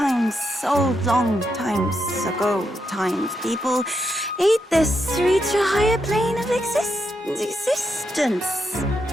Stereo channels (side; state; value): both; normal; correlation 0.82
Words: long times ago, people ate this to reach a higher plane of existence